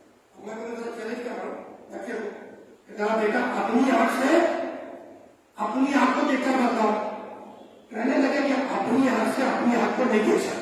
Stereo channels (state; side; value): identical; both; correlation 1.00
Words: میں تمہیں ذرا چیلنج کر رہا ہوں، بچے کو ذرا بیٹا اپنی آنکھ سے اپنی آنکھ کو دیکھ کر بتاؤ۔ کہنے لگے کہ اپنی آنکھ سے اپنی آنکھ کو نہیں دیکھ